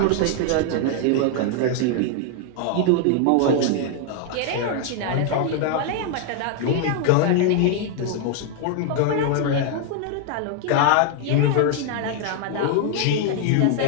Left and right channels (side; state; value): both; different; correlation 0.00